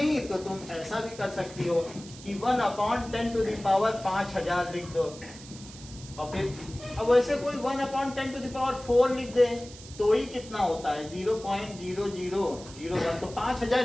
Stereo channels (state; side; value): noise; right; hiss, 17 dB below the sound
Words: तो तुम ऐसा भी कर सकती हो कि 1 upon 10 to the power 5000 लिख दो, और फिर अब वैसे कोई 1 upon 10 to the power 4 लिख दे, तो ही कितना होता है? 0.0001, तो